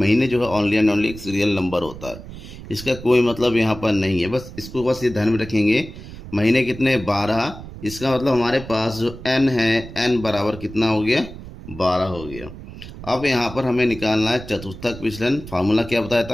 जो है ओनली एंड ओनली एक सीरियल नंबर होता है, इसका कोई मतलब यहाँ पर नहीं है। बस इसको बस ये ध्यान में रखेंगे। महीने कितने? 12। इसका मतलब हमारे पास जो n है, n बराबर कितना हो गया? 12 हो गया। अब यहाँ पर हमें निकालना है चतुर्थक विचलन। फार्मूला क्या बताया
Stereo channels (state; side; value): noise; right; rumble, 14 dB below the sound